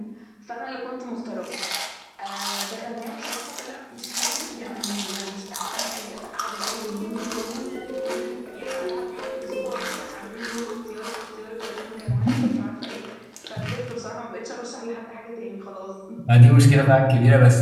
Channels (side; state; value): both; identical; correlation 1.00